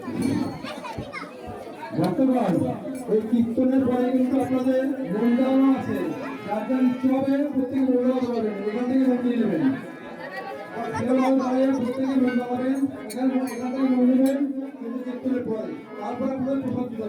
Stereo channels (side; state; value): both; identical; correlation 1.00